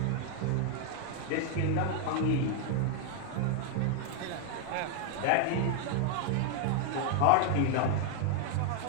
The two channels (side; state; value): both; different; correlation 0.00